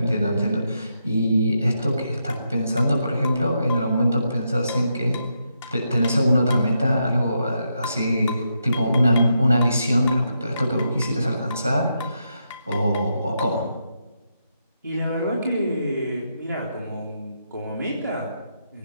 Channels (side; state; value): both; inverted; correlation -0.82